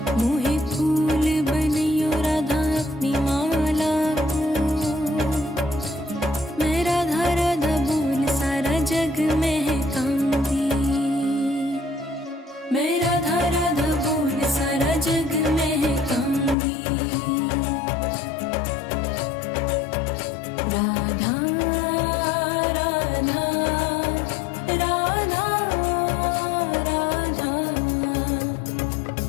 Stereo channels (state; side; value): drops out; right; at 16.6 s